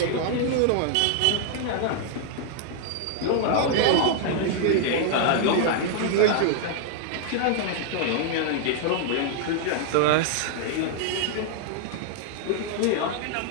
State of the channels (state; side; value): different; both; correlation 0.00